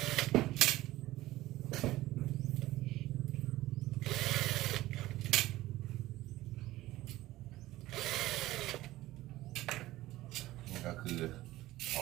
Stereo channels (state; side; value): quieter; left; 16.7 dB